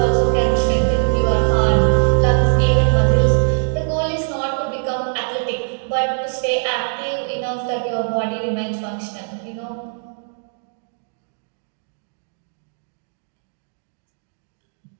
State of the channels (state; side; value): silent; left; digital silence